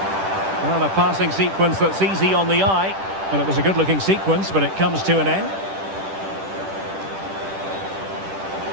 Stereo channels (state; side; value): late; left; 10 ms